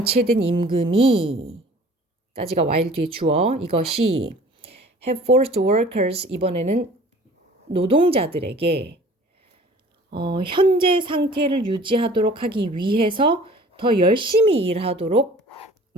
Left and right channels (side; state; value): both; normal; correlation 0.48